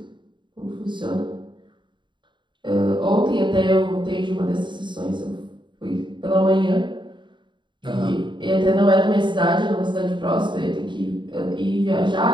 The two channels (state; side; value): late; left; 0.23 ms